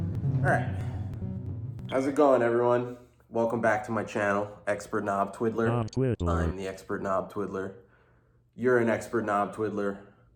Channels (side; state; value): both; identical; correlation 1.00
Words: Alright, how's it going, everyone? Welcome back to my channel, Expert Knob Twiddler. I'm the Expert Knob Twiddler. You're an Expert Knob Twiddler.